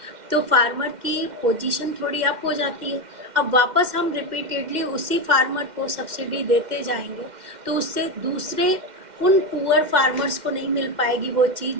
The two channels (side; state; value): left; late; 2.1 ms